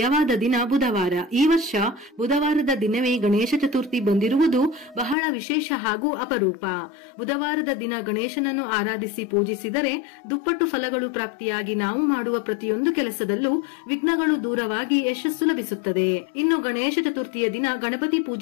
ದಿನ ಬುಧವಾರ. ಈ ವರ್ಷ ಬುಧವಾರದ ದಿನವೇ ಗಣೇಶ ಚತುರ್ಥಿ ಬಂದಿರುವುದು ಬಹಳ ವಿಶೇಷ ಹಾಗೂ ಅಪರೂಪ. ಬುಧವಾರದ ದಿನ ಗಣೇಶನನ್ನು ಆರಾಧಿಸಿ ಪೂಜಿಸಿದರೆ ದುಪ್ಪಟ್ಟು ಫಲಗಳು ಪ್ರಾಪ್ತಿಯಾಗಿ ನಾವು ಮಾಡುವ ಪ್ರತಿಯೊಂದು ಕೆಲಸದಲ್ಲೂ ವಿಘ್ನಗಳು ದೂರವಾಗಿ ಯಶಸ್ಸು ಲಭಿಸುತ್ತದೆ. ಇನ್ನು ಗಣೇಶ ಚತುರ್ಥಿಯ ದಿನ ಗಣಪತಿ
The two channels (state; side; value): drops out; right; at 5.2 s